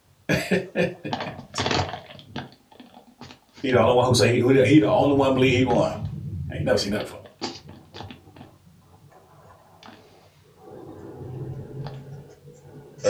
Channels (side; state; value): both; identical; correlation 1.00